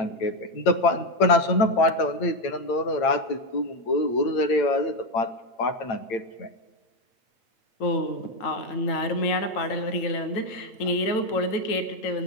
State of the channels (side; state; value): right; late; 8.9 ms